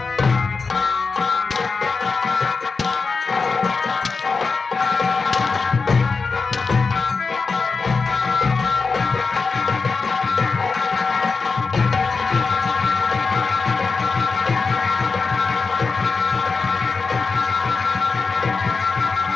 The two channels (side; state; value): right; quieter; 4.5 dB